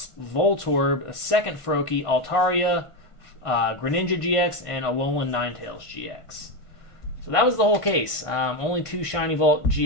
Voltorb, a second Froakie, Altaria, Greninja GX, and Alolan Ninetales GX. So that was the whole case. Only 2 Shiny Vault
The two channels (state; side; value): late; right; 1.5 ms